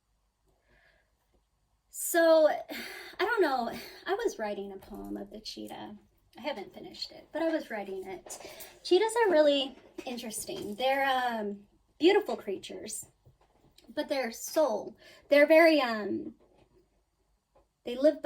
So, I don't know, I was writing a poem of the cheetah. I haven't finished it, but I was writing it. Cheetahs are really interesting. They're beautiful creatures, but their soul, they're very they live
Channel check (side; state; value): both; identical; correlation 1.00